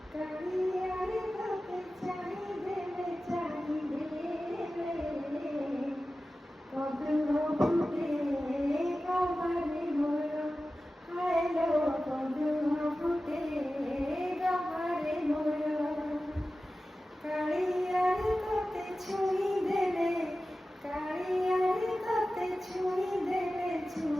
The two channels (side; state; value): both; normal; correlation 0.95